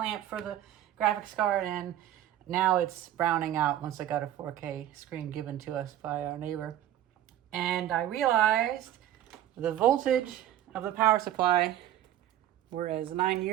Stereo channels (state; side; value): quieter; left; 12.2 dB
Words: for the graphics card, and now it's browning out once I got a 4K screen given to us by our neighbor. And I realized the voltage of the power supply, whereas 9